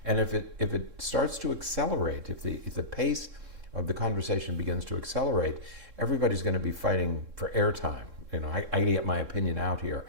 And if it starts to accelerate, if the pace of the conversation begins to accelerate, everybody's going to be fighting for airtime. I get my opinion out here.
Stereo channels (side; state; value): left; late; 3.7 ms